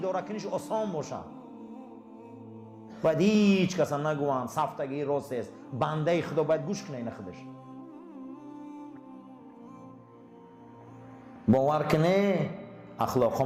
کنیش آسان باشه باید هیچ کس نگوان صفتگی راست است بنده خدا باید گوش کنه این خودش باور کنه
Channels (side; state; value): both; identical; correlation 1.00